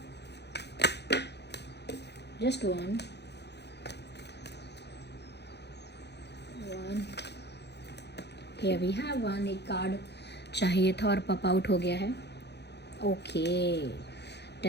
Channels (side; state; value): right; late; 0.49 ms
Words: Just one. Here we have one. एक कार्ड चाहिए था और पॉप आउट हो गया है. Okay,